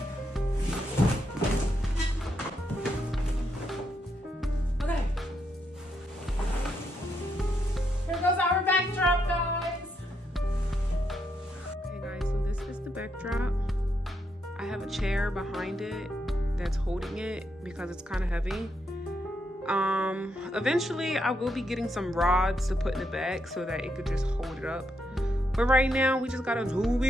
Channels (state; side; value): normal; both; correlation 0.79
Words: Okay. Here goes our backdrop, guys. Okay, guys, so this is the backdrop. I have a chair behind it that's holding it because it's kind of heavy. Eventually I will be getting some rods to put in the back so that it could just hold it up. But right now we just gotta do what